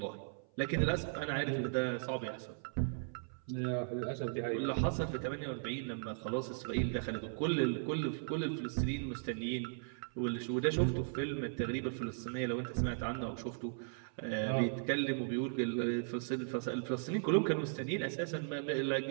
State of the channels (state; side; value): silent; left; 53 dB below the other